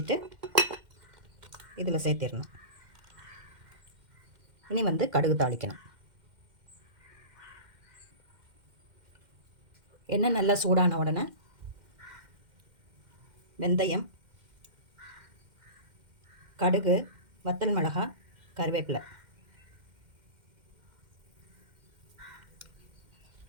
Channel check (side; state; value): left; late; 2.1 ms